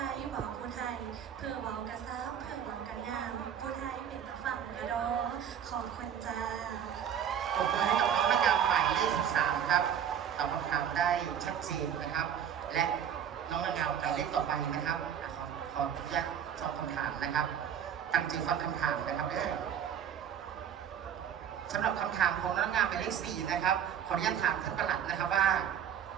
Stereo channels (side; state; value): left; quieter; 8.9 dB